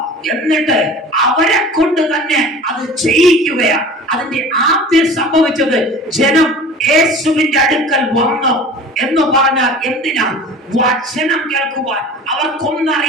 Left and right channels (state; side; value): normal; both; correlation 0.40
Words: എന്നിട്ട് അവരെ കൊണ്ട് തന്നെ അത് ചെയ്യിക്കുകയാണ്. അതിന്റെ ആദ്യം സംഭവിച്ചത്, ജനം യേശുവിന്റെ അടുക്കൽ വന്നു എന്ന് പറഞ്ഞാൽ എന്തിനാ? വചനം കേൾക്കുവാൻ.